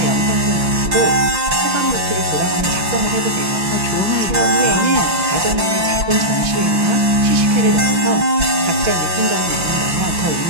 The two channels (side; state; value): left; late; 5.8 ms